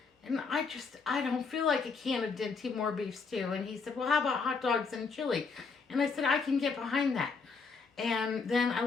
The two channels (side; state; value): right; quieter; 4.8 dB